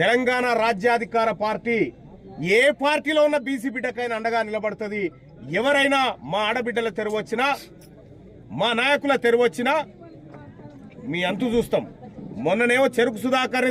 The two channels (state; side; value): identical; both; correlation 1.00